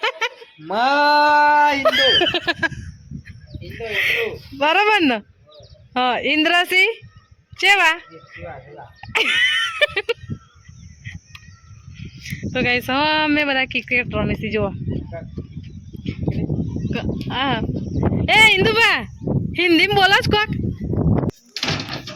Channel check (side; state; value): both; identical; correlation 1.00